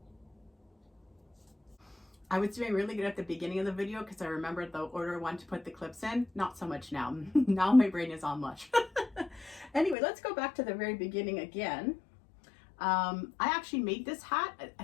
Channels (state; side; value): drops out; right; at 10.0 s